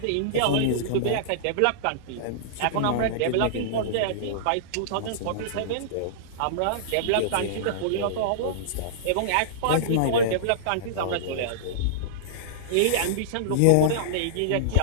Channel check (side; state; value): both; different; correlation -0.03